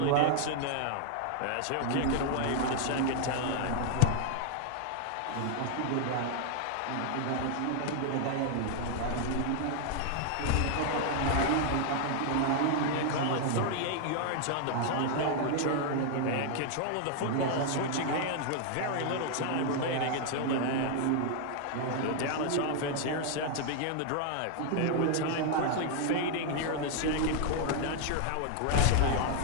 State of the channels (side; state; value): both; different; correlation 0.00